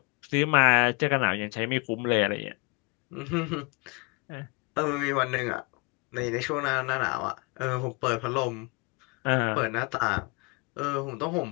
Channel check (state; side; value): quieter; right; 29.7 dB